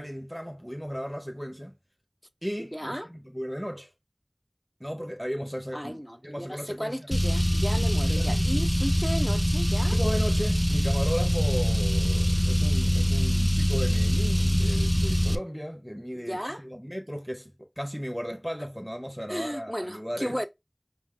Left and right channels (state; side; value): identical; both; correlation 1.00